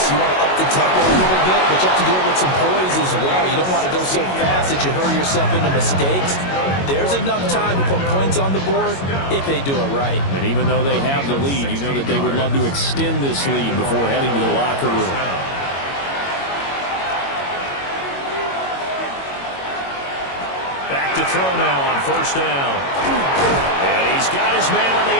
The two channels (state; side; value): late; right; 22 ms